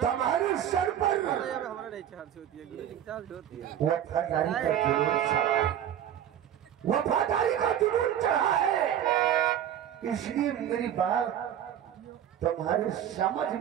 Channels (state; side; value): quieter; left; 10.3 dB